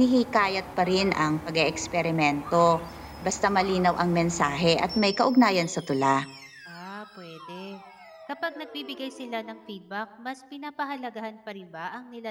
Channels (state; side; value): identical; both; correlation 1.00